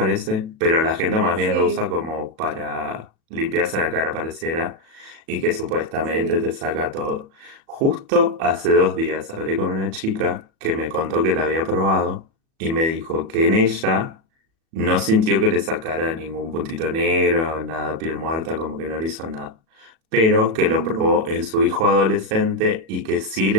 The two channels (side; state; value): left; late; 37 ms